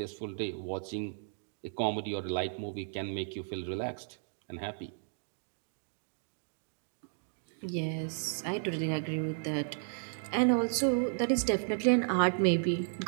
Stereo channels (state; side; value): silent; left; digital silence